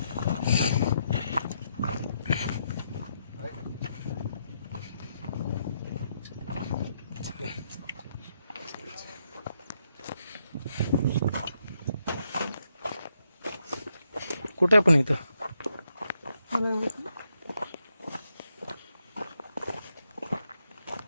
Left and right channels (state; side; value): inverted; both; correlation -0.79